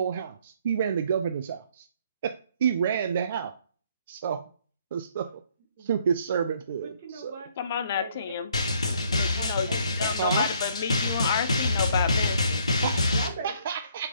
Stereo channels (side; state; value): both; inverted; correlation -0.64